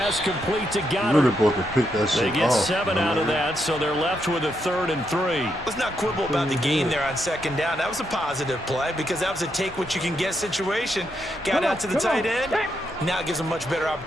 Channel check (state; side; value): normal; both; correlation 0.80